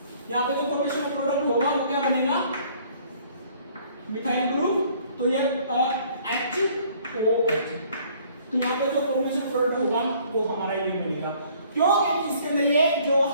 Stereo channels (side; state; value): both; inverted; correlation -0.58